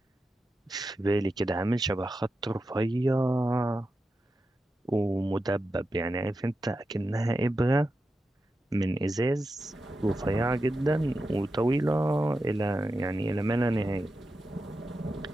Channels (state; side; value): normal; both; correlation 0.90